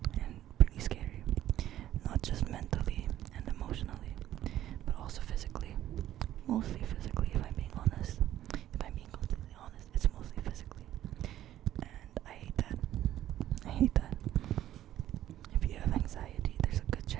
and pretty scary. Not just mentally and emotionally, but also physically. Mostly physically, if I'm being honest. If I'm being completely honest, it's mostly physically. And I hate that. I hate that. If you have anxiety, there's a good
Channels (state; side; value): quieter; left; 12.7 dB